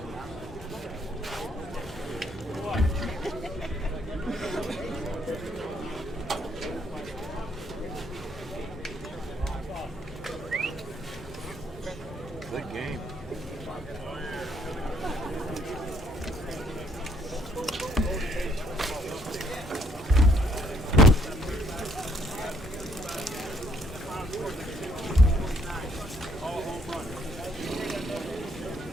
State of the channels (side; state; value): both; normal; correlation 0.68